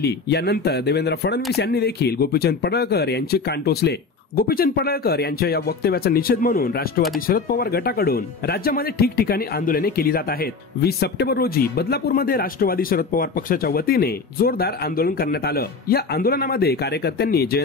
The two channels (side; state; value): right; quieter; 4.4 dB